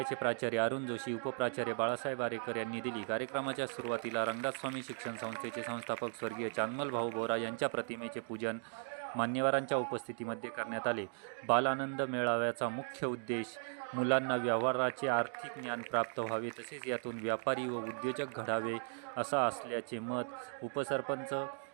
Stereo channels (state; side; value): silent; left; 53 dB below the other